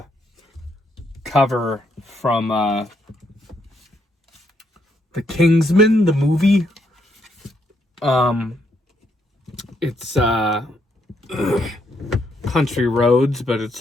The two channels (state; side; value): normal; both; correlation 0.75